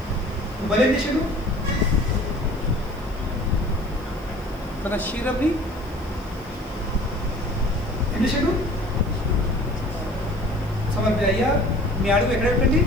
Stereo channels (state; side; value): noise; left; hiss, 27 dB below the sound